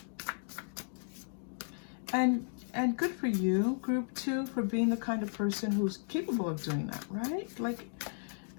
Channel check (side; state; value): right; silent; digital silence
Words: And And good for you, group 2, for being the kind of person who's capable of doing that, right? Like,